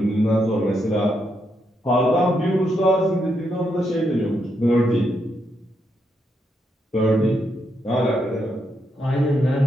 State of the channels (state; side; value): normal; both; correlation 0.80